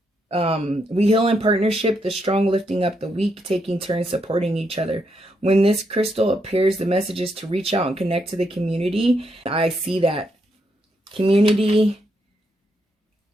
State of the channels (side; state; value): both; normal; correlation 0.79